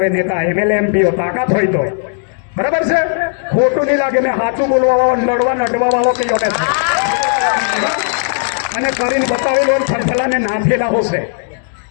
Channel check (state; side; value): silent; right; digital silence